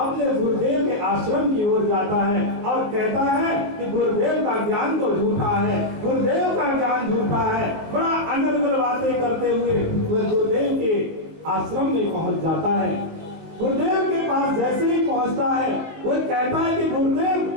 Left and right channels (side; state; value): left; late; 19 ms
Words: गुरुदेव के आश्रम की ओर जाता है और कहता है कि गुरुदेव का ज्ञान तो झूठा है, गुरुदेव का ज्ञान झूठा है। बड़ा अनर्गल बातें करते हुए वह गुरुदेव के आश्रम में पहुंच जाता है। गुरुदेव के पास जैसे ही पहुंचता है वह कहता है कि गुरुदेव,